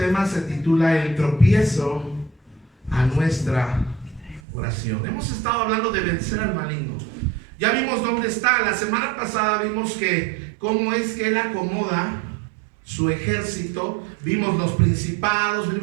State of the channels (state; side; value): drops out; left; at 4.4 s